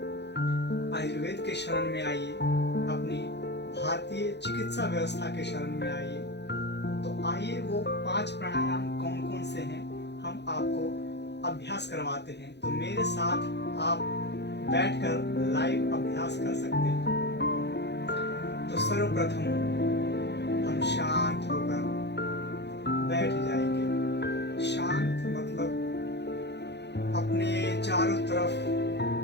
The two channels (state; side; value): late; right; 0.50 ms